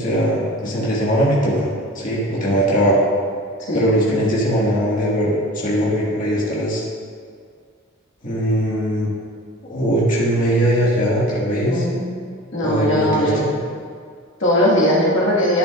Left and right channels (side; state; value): both; normal; correlation 0.37